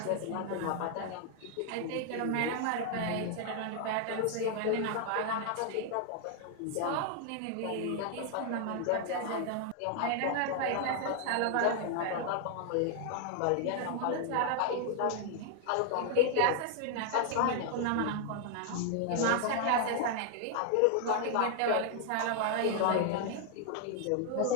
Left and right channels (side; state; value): both; different; correlation 0.00